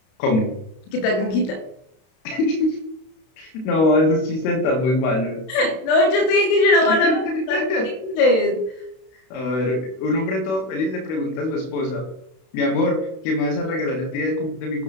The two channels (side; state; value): right; late; 32 ms